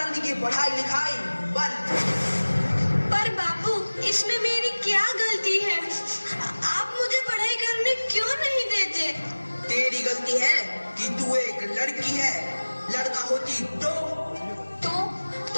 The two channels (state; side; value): inverted; both; correlation -1.00